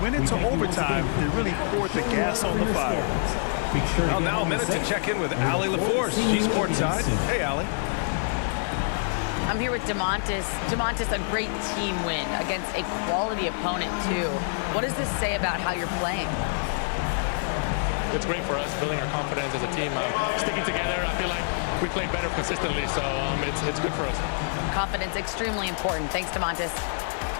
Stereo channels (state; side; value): silent; right; digital silence